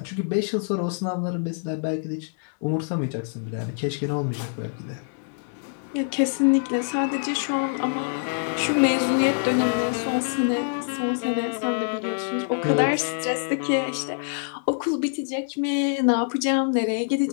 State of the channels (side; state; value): right; silent; digital silence